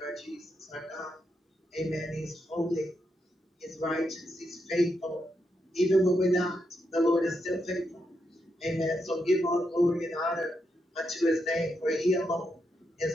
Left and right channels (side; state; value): both; normal; correlation 0.83